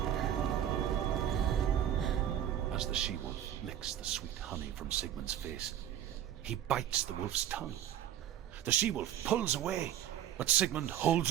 face. He bites the wolf's tongue. The she-wolf pulls away, but Sigmund holds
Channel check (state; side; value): quieter; left; 11.0 dB